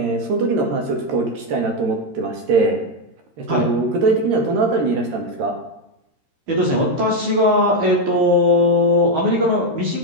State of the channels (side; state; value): left; late; 13 ms